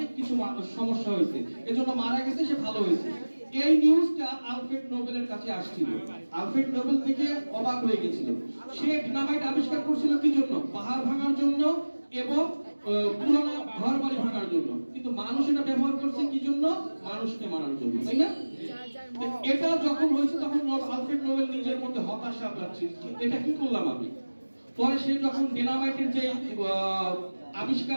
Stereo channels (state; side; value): inverted; both; correlation -1.00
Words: কিছু সমস্যা হয়েছে, এজন্য মারা গেছে, সে ভালো হয়েছে। এই নিউজটা আলফ্রেড নোবেলের কাছে আসছিল। আলফ্রেড নোবেল থেকে অবাক হয়ে গেছিল। সে ডিনামাইট আবিষ্কার করছিল কি জন্য? পাহাড় ভাঙার জন্য এবং পুরোনো ঘর বাড়ি ভাঙার জন্য, কিন্তু মানুষ এটা ব্যবহার করছে কি জন্য? মানুষকে মারার জন্য, তাই না? এটা যখন হয়েছে তখন আলফ্রেড নোবেল নিজের মধ্যে হতাশা পাচ্ছে, এটা কি করলাম আমি। পরে সে যখন ডিনামাইটের যে